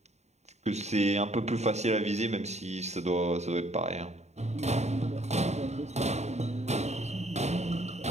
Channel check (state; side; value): late; left; 0.32 ms